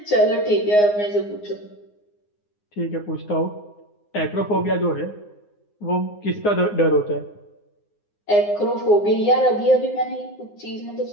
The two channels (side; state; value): right; late; 9.7 ms